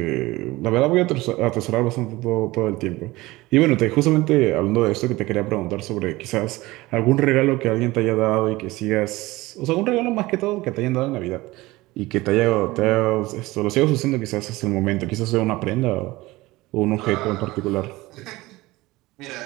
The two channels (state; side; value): quieter; left; 19.9 dB